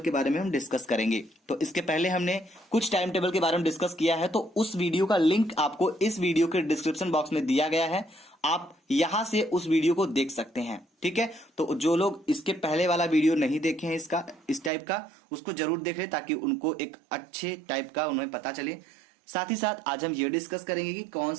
के बारे में हम डिस्कस करेंगे। तो इसके पहले हमने कुछ टाइम टेबल के बारे में डिस्कस किया है, तो उस वीडियो का लिंक आपको इस वीडियो के डिस्क्रिप्शन बॉक्स में दिया गया है, आप यहां से उस वीडियो को देख सकते हैं, ठीक है। तो जो लोग इसके पहले वाला वीडियो नहीं देखे हैं इसका इस टाइप का, उसको जरूर देख लें ताकि उनको एक अच्छे टाइप का उन्हें पता चले। साथ ही साथ आज हम ये डिस्कस करेंगे कि कौन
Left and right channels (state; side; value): drops out; left; at 14.7 s